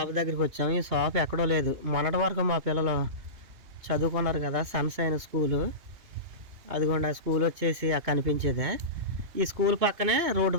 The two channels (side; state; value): left; late; 2.8 ms